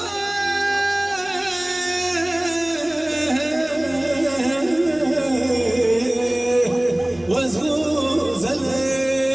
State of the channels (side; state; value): right; noise; rumble, 30 dB below the sound